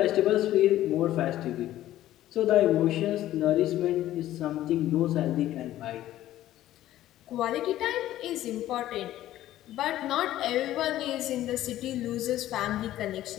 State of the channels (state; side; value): quieter; right; 13.8 dB